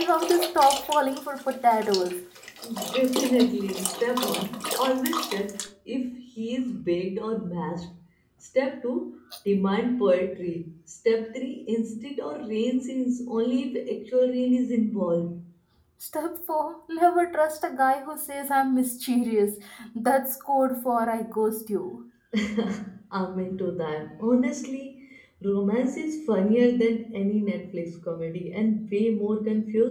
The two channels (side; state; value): both; identical; correlation 1.00